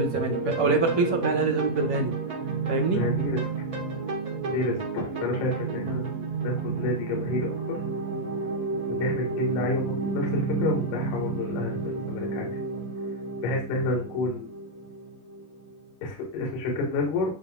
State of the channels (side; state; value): right; late; 11 ms